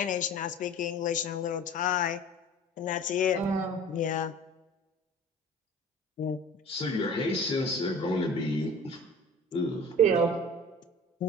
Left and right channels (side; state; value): both; normal; correlation 0.40